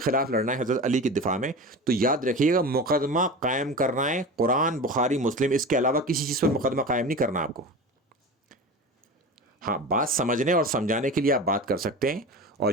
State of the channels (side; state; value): both; normal; correlation 0.31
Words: لڑنا ہے حضرت علی کے دفاع میں، تو یاد رکھیے گا مقدمہ قائم کرنا ہے قرآن، بخاری، مسلم، اس کے علاوہ کسی چیز پر مقدمہ قائم نہیں کرنا آپ کو۔ ہاں، بات سمجھنے اور سمجھانے کے لیے آپ بات کر سکتے ہیں، اور